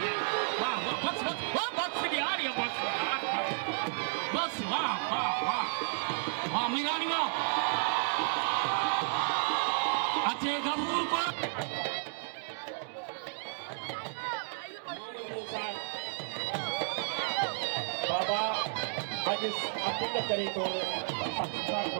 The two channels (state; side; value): silent; left; digital silence